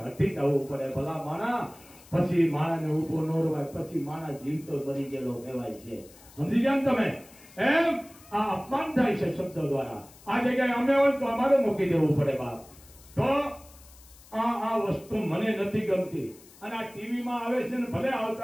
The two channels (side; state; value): left; noise; hiss, 23 dB below the sound